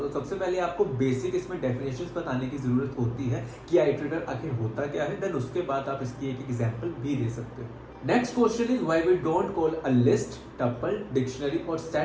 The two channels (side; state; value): both; identical; correlation 1.00